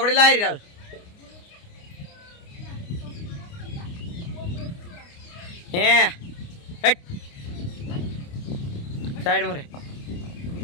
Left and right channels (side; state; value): right; late; 29 ms